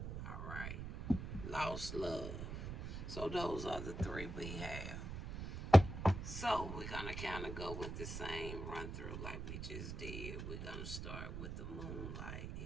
All right, lost love. So those are the three we have. So we're gonna kind of go with the same run through like we just did. We're gonna start with the Moonlight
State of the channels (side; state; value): right; noise; rumble, 6 dB below the sound